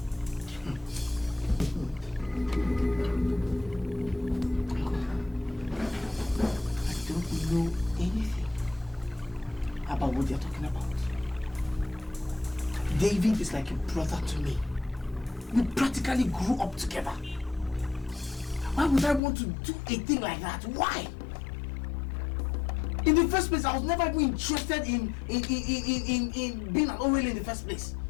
I don't know anything about what they're talking about. David is like a brother to me. We practically grew up together. Why would I want to do a thing like that? Why? In the first place, I was never even interested in being an OL in the first place.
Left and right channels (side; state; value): right; drops out; at 19.2 s